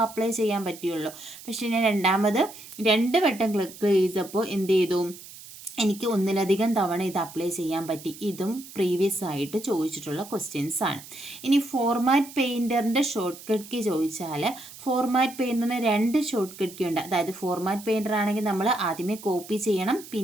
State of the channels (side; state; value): right; noise; hiss, 16 dB below the sound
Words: അപ്ലൈ ചെയ്യാൻ പറ്റുള്ളൂ. പക്ഷേ ഞാൻ രണ്ട് വട്ടം ക്ലിക്ക് ചെയ്തപ്പോൾ എന്ത് ചെയ്തു, എനിക്ക് ഒന്നിലധികം തവണ ഇത് അപ്ലൈ ചെയ്യാൻ പറ്റി. ഇതും പ്രീവിയസ് ആയിട്ട് ചോദിച്ചിട്ടുള്ള ക്വസ്റ്റ്യൻസ് ആണ്. ഇനി ഫോർമാറ്റ് പെയിൻറ്ററിൻ്റെ ഷോർട്ട് കട്ട് കീ ചോദിച്ചാൽ, ഫോർമാറ്റ് പെയിൻറ്ററിന് 2 ഷോർട്ട് കട്ട് കീ ഉണ്ട്. അതായത് ഫോർമാറ്റ് പെയിൻറ്റർ ആണെങ്കിൽ നമ്മൾ ആദ്യമേ കോപ്പി ചെയ്യണം,